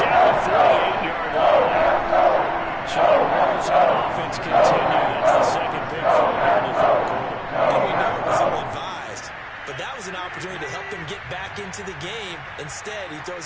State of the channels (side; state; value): both; identical; correlation 1.00